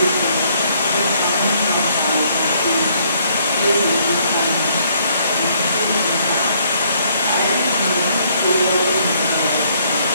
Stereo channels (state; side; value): inverted; both; correlation -0.67